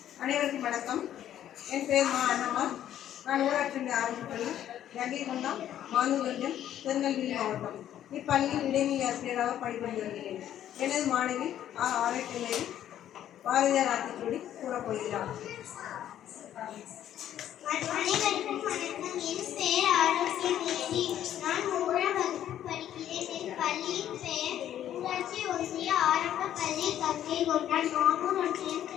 அனைவருக்கும் வணக்கம். என் பெயர் அண்ணம்மாள். நான் ஊராட்சி ஆரம்பிப்பள்ளி கங்கைகொண்டம், மானூர்கஞ்சம், திருநெல்வேலி மாவட்டம். இப்பள்ளியில் இடைநிலை ஆசிரியராக பணிபுரிந்து வருகிறேன். எனது மாணவி ஆராய்ச்சி பாரதியார் ஆத்திச்சூடி கூறப்போகிறார். அனைவருக்கும் வணக்கம். என் பெயர் ஆரோக்கியமேரி. நான் 3ஆம் வகுப்பு படிக்கிறேன். என் பள்ளியின் பெயர் ஊராட்சி ஒன்றிய ஆரம்ப பள்ளி கங்கைகொண்டான், மாமூர் ஒன்றியம்,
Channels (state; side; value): quieter; right; 11.2 dB